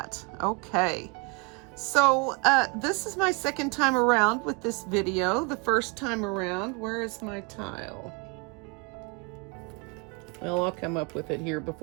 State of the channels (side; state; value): left; quieter; 30.3 dB